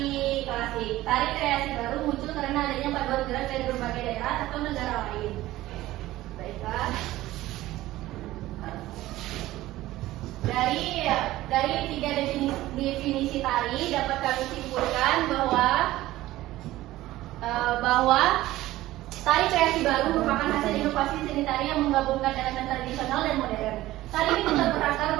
Tari kreasi baru muncul karena adanya paduan gerak dari berbagai daerah atau negara lain. Baiklah. Dari tiga definisi tari dapat kami simpulkan bahwa tari kreasi baru merupakan hasil inovasi seni tari yang menggabungkan elemen tradisional dan modern. Tari ini tetap berakar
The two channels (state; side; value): quieter; left; 16.3 dB